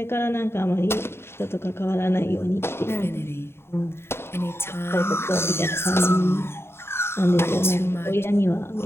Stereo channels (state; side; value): late; right; 0.12 ms